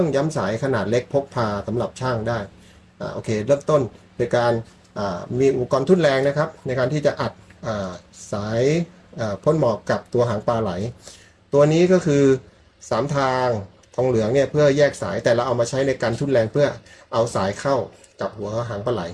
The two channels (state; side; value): identical; both; correlation 1.00